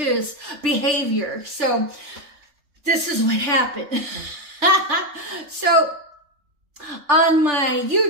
behavior. So this is what happened. So on my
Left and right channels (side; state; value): left; late; 3.4 ms